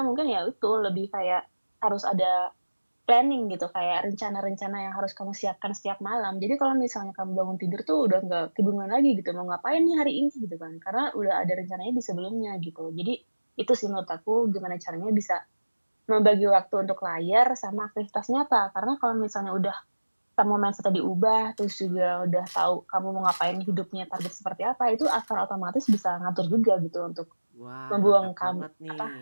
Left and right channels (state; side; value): inverted; both; correlation -1.00